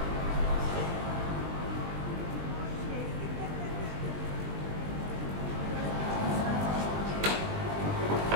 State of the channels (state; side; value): late; left; 20 ms